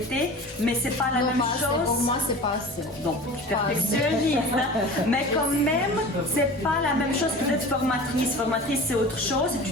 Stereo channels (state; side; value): normal; both; correlation 0.37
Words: mais c'est pas la Non, même pas assez. chose. Pour moi, c'est pas assez. Donc, tu Pas assez. perfectionnistes, hein. Mais quand même, c'est pas la même chose que d'être formatrice. Formatrice, c'est autre chose.